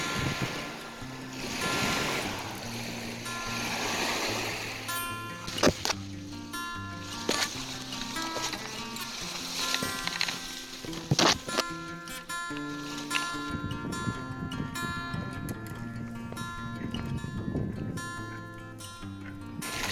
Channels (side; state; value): both; identical; correlation 1.00